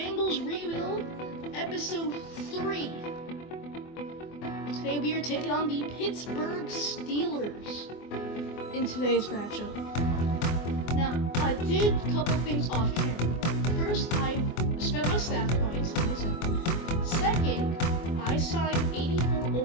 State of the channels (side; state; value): right; late; 24 ms